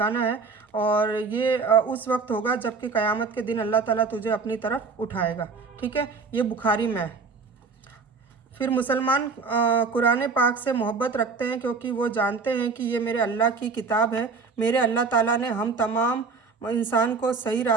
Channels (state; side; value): quieter; left; 4.6 dB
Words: है। और ये उस वक्त होगा जबकि क़यामत के दिन अल्लाह ताला तुझे अपनी तरफ उठाएगा। ठीक है, ये बुखारी में है। फिर मुसलमान कुरान पाक से मोहब्बत रखते हैं क्योंकि वो जानते हैं कि ये मेरे अल्लाह की किताब है। मेरे अल्लाह ताला ने हम तमाम इंसान को सही